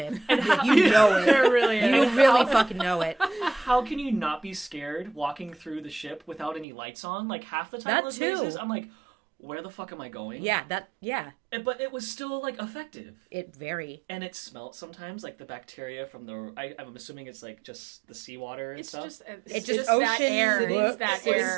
You know it. There really is. You really fucking know it. How can you not be scared walking through the ship without any lights on? Like half the time That in those too. mazes, I'm like, where the fuck am I going? Yeah, But it was still like effective. it very. And it smelt sometimes like the bacteria from I'm assuming it's like just the seawater and It's stuff. just It's just just that ocean air. city. It's that It's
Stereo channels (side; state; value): left; drops out; at 6.7 s